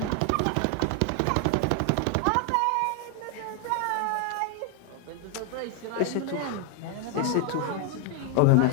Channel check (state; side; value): different; both; correlation 0.01